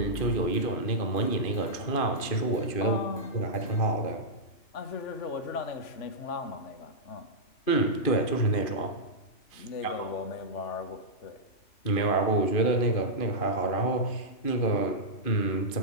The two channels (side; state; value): right; late; 2.5 ms